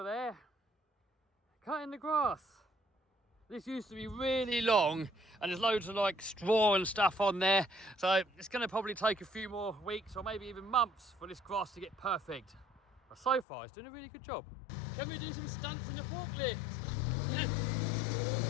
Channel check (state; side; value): drops out; right; at 13.5 s